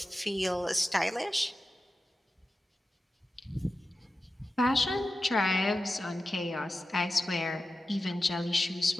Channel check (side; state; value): both; normal; correlation 0.92